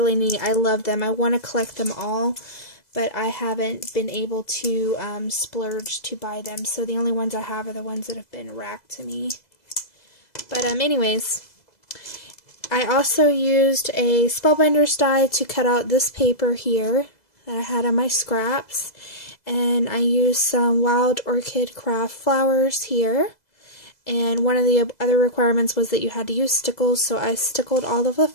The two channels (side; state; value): right; late; 2.0 ms